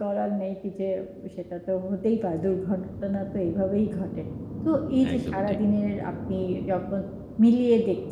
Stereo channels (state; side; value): identical; both; correlation 1.00